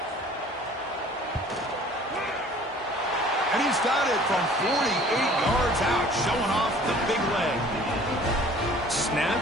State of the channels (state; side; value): normal; both; correlation 0.50